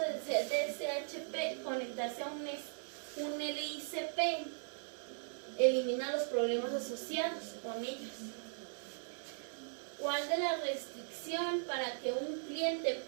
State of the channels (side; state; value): left; silent; digital silence